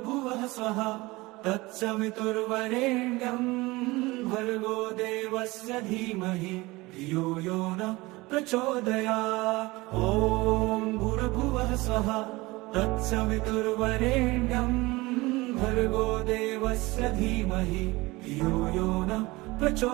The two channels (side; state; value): left; quieter; 21.6 dB